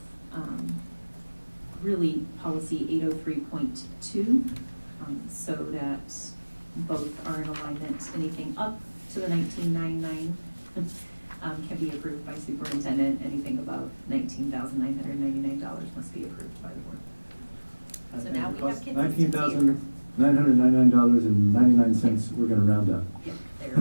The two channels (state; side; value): inverted; both; correlation -1.00